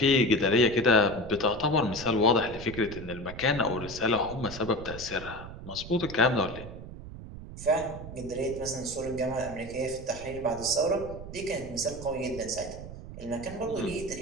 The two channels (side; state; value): right; noise; rumble, 12 dB below the sound